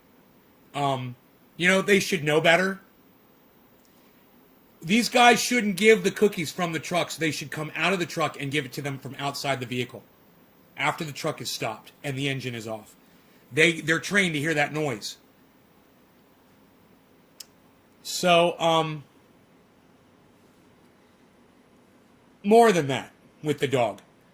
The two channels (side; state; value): both; identical; correlation 1.00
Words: You know, they should know better. These guys shouldn't give the cookies from the trucks. They should come out of the truck and give it to them from outside the vehicle after the truck is stopped and the engine is off. They're trained to hear that noise. So, more than that with the dog.